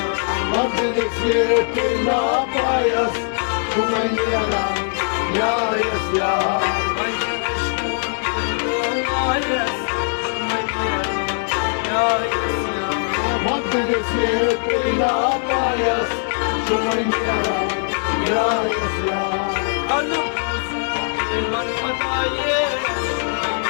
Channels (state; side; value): silent; right; digital silence